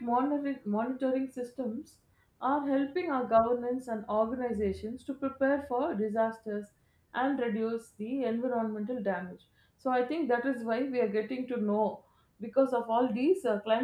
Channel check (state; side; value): identical; both; correlation 1.00